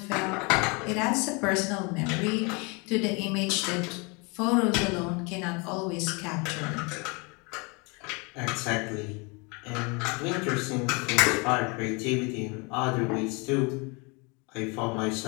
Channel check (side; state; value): right; quieter; 30.1 dB